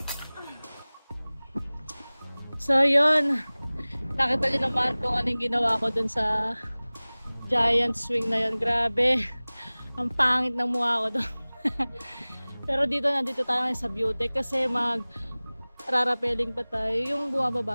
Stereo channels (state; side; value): inverted; both; correlation -1.00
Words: So yun, nakita niyo naman kung anong ginawa ko dun sa giant swing na yun. Grabe, ang pangit ng mukha ko doon. Pero nandito tayo ngayon sa view deck kasi rarapeling pa tayo yung bumababa